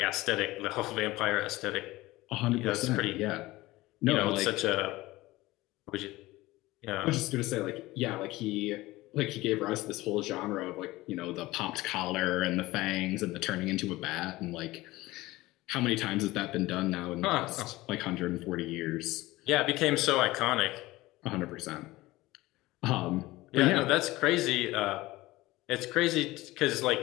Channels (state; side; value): quieter; right; 18.9 dB